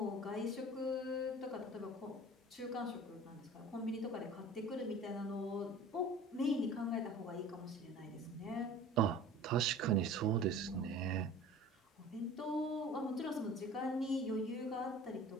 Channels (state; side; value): normal; both; correlation 0.43